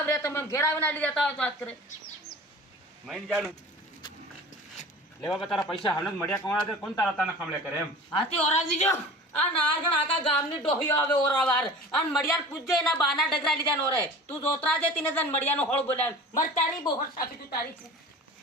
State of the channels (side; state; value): both; normal; correlation 0.39